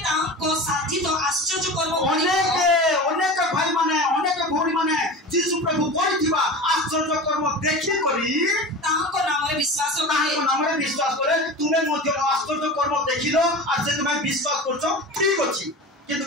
तांको साथी तो आश्चर्य कर्म अनेक भाई माने अनेक भौरी माने यीशु प्रभु करिथिबा आश्चर्य कर्म देखि करी तांको नाम रे विश्वास नामरे विश्वास करे तुम्हें मध्य आश्चर्य कर्म देखिलो आज से तुम्हें विश्वास करछो ठीक अछि किंतु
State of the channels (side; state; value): both; normal; correlation 0.31